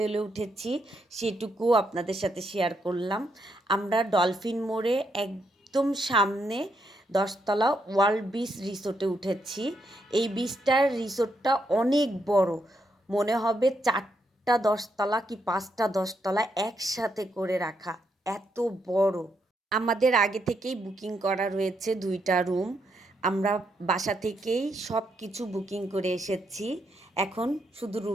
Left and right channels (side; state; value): both; normal; correlation 0.78